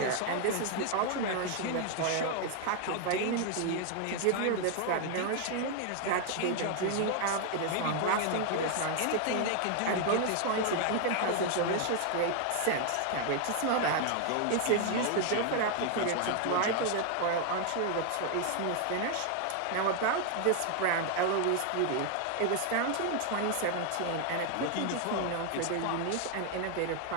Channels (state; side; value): different; both; correlation 0.00